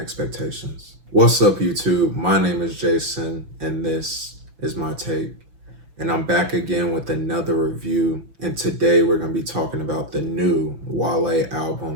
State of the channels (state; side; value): late; left; 6.0 ms